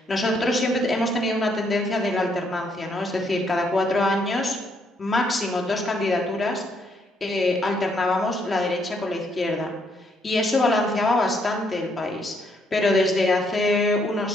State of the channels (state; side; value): normal; both; correlation 0.72